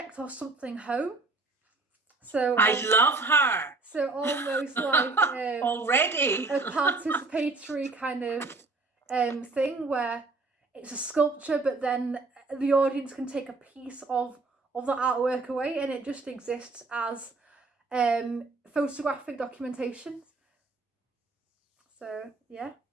or something home. So I love her. so almost like Already. a participatory kind of thing where it's a sculpture, but then the audience can take a piece of the artwork away, and it just exists as photographic documentation. So yeah,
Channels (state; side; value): quieter; left; 3.5 dB